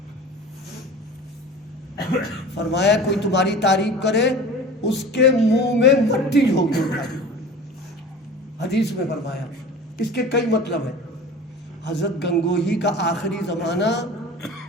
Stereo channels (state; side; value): normal; both; correlation 0.38